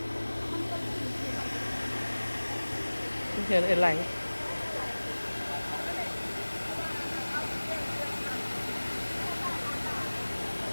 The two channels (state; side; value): inverted; both; correlation -1.00